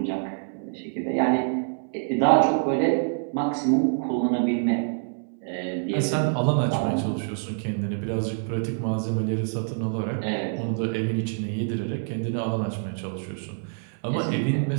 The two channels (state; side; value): silent; left; 61 dB below the other